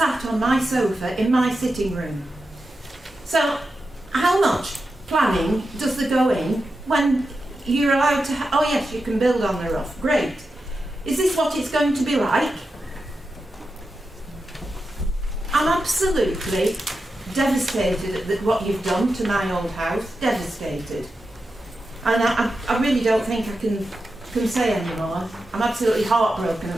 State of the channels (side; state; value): both; normal; correlation 0.90